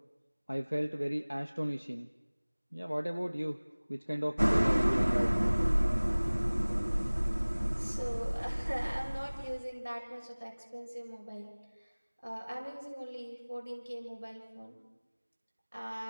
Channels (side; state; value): both; inverted; correlation -1.00